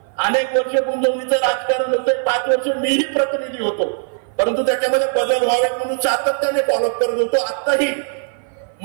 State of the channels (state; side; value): silent; left; 56 dB below the other